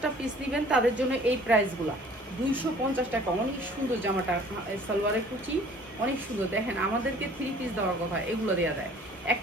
পিস নেবেন তাদের জন্য এই প্রাইসগুলো, 250 টাকা। অনেক সুন্দর জামাটা, সালোয়ারের কুচি অনেক সুন্দর। দেখেন, আমাদেরকে 3 পিস দেওয়ার কথা, এগুলো দেওয়া দেয়,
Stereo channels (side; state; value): both; normal; correlation 0.52